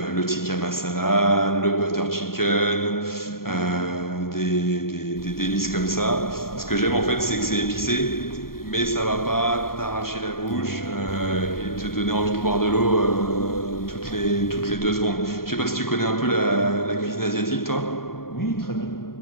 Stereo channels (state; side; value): late; right; 0.93 ms